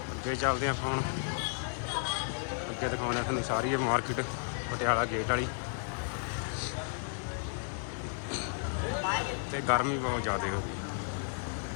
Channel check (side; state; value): right; silent; digital silence